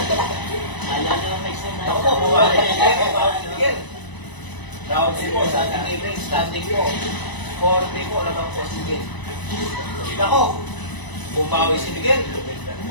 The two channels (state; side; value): late; right; 1.0 ms